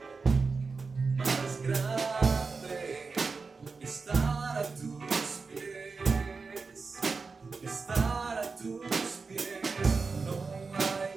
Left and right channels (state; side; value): quieter; left; 4.5 dB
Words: más grande que estar a tus pies, que estar a tus pies.